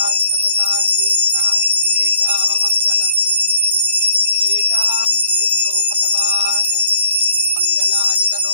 सर्वकार्येषु नास्ति तेषाममङ्गलम्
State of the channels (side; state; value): both; inverted; correlation -0.66